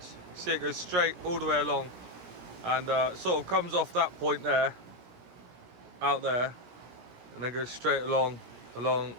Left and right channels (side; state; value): left; late; 16 ms